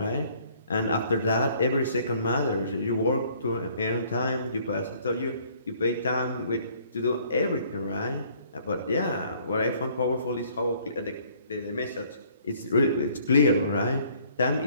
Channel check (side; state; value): both; inverted; correlation -0.60